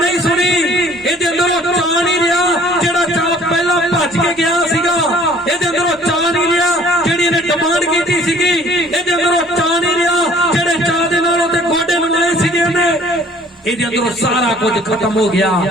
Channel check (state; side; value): normal; both; correlation 0.54